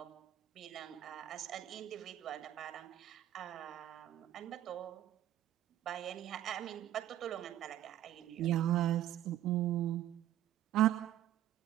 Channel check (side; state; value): left; quieter; 12.6 dB